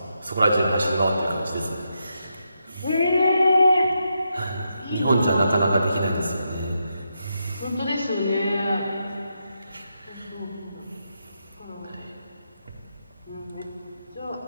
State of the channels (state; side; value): inverted; both; correlation -0.83